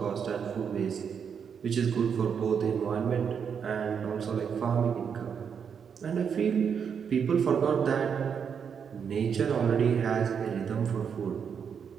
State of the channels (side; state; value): left; quieter; 7.1 dB